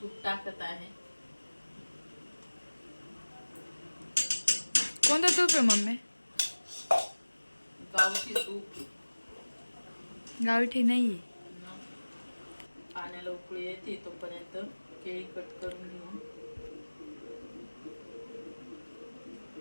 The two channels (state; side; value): inverted; both; correlation -1.00